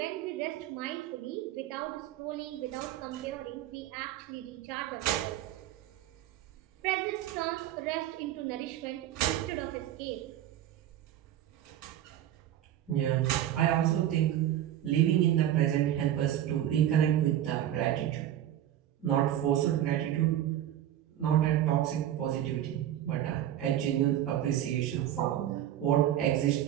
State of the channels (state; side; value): quieter; left; 11.9 dB